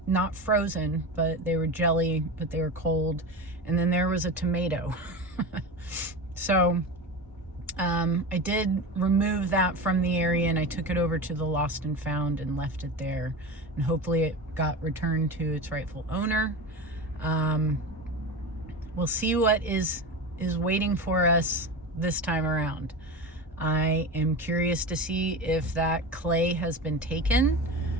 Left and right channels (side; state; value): both; normal; correlation 0.26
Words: frozen, but they were jelly, but they were cold. And then there was a tomato. So I did remove that from the area and I took it over to the Lost and Found and left it there. And hopefully it got returned to its rightful owner. We'll see what is waiting for us this time around. I am curious to see if that clay has been taken.